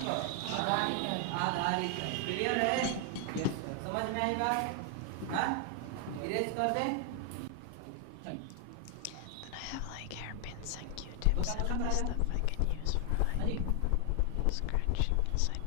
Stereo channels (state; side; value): different; both; correlation 0.00